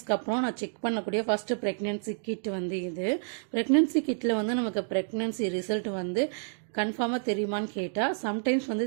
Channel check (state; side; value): silent; left; digital silence